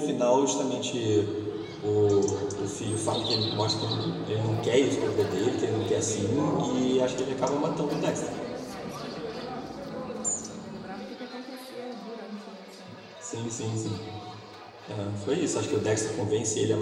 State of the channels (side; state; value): both; identical; correlation 1.00